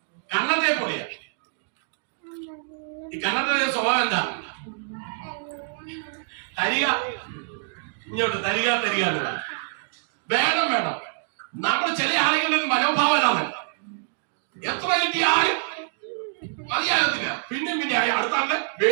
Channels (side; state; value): left; silent; digital silence